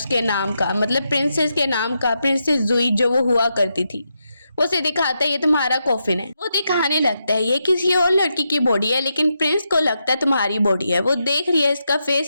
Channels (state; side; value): inverted; both; correlation -0.84